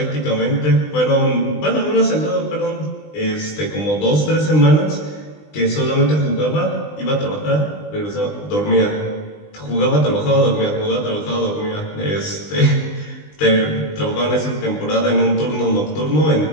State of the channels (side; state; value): right; late; 20 ms